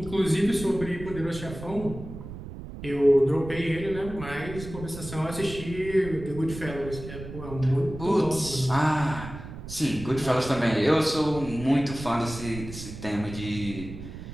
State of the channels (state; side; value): noise; right; rumble, 11 dB below the sound